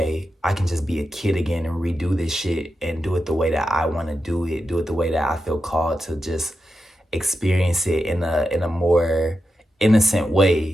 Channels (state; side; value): normal; both; correlation 0.89